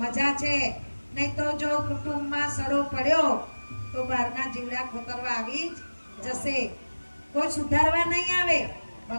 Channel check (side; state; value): both; inverted; correlation -1.00